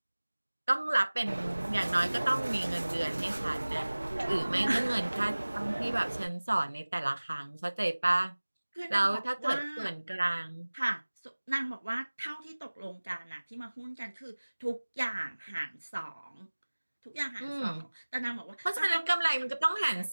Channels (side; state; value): both; inverted; correlation -1.00